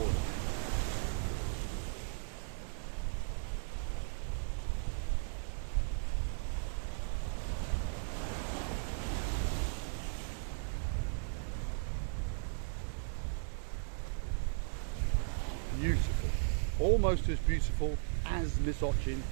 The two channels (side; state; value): left; silent; digital silence